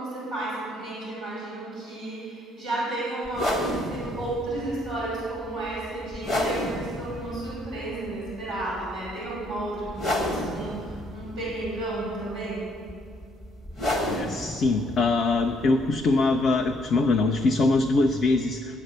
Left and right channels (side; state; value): both; normal; correlation 0.69